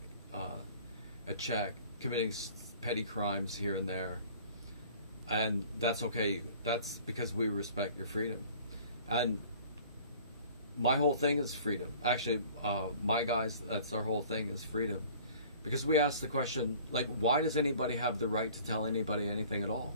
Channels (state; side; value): inverted; both; correlation -0.48